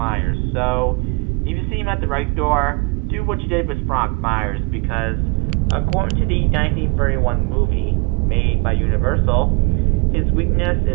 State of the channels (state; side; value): quieter; left; 30.9 dB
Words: so if you see him at the right door, do what you did with Frank Myers, because according to the 1931 movie made by Universal, his weakness